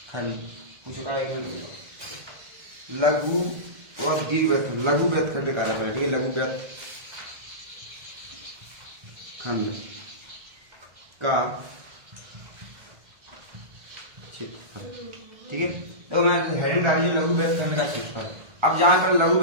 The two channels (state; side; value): late; left; 1.6 ms